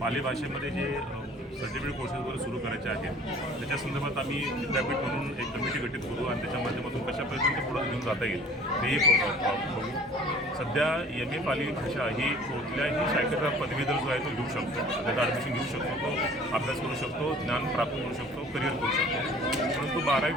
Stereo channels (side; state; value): both; normal; correlation 0.49